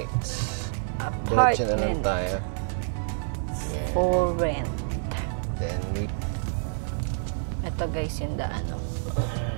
Diretso na lang tayo. Yeah. For rent. Then we... Ito guys, yung daan.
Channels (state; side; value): silent; left; digital silence